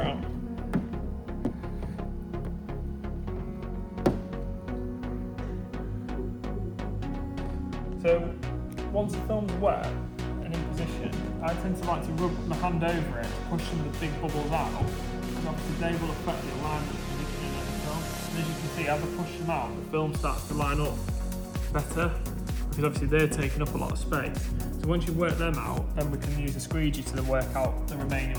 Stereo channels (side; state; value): both; identical; correlation 1.00